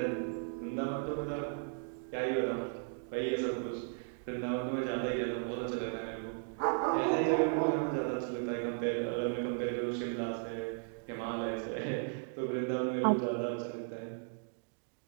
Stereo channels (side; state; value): left; silent; 54 dB below the other